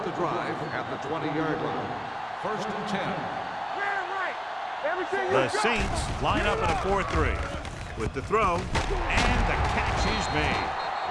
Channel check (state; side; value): identical; both; correlation 1.00